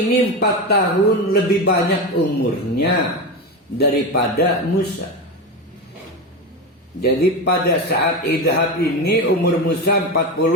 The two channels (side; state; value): both; normal; correlation 0.19